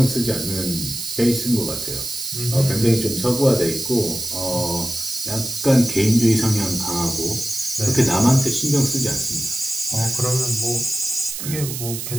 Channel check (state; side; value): noise; right; hiss, 6 dB below the sound